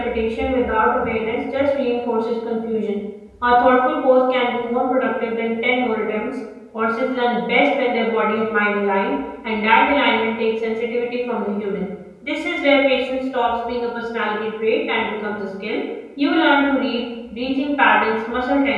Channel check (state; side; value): identical; both; correlation 1.00